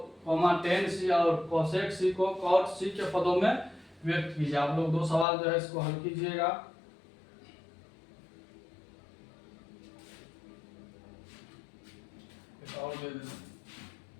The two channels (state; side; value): drops out; right; at 5.2 s